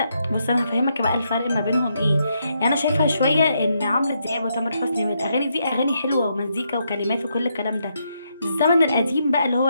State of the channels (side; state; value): both; inverted; correlation -0.78